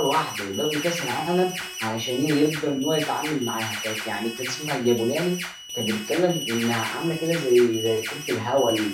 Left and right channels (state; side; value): identical; both; correlation 1.00